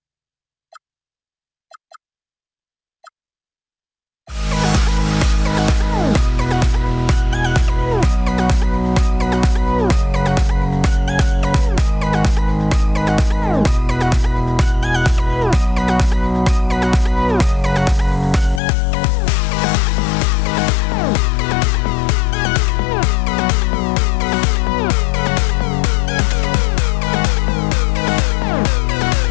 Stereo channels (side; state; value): right; drops out; at 18.6 s